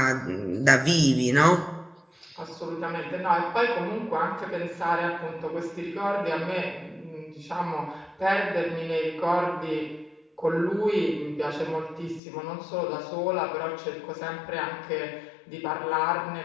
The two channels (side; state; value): right; drops out; at 12.2 s